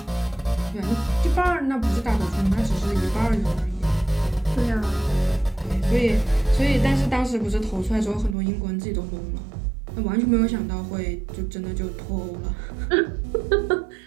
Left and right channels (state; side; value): drops out; left; at 8.3 s